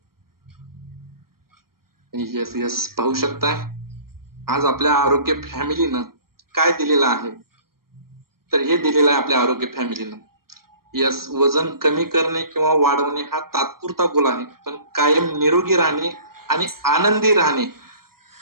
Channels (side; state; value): left; late; 0.93 ms